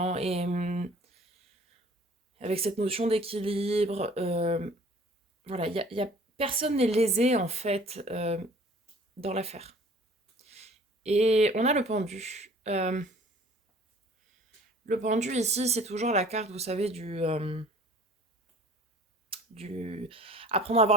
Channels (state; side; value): normal; both; correlation 0.50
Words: Et avec cette notion d'équilibre, voilà, personne n'est lésé en fait dans l'affaire. Et on a le pendu. Le pendu ici, c'est toujours la carte, vous savez, du apprendre à voir